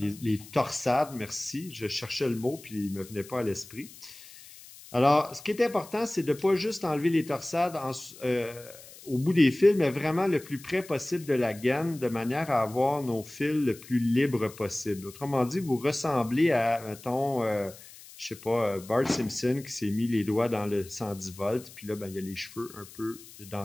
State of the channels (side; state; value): left; noise; hiss, 19 dB below the sound